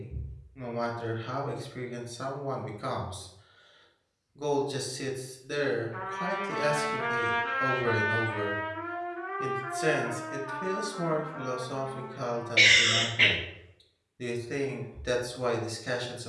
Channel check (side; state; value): both; identical; correlation 1.00